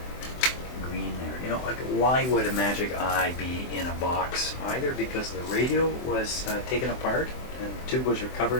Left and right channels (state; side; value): late; right; 24 ms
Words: green there. You know, like, why would a Magic Eye be in a box? Either because the radio was taken apart and the tube was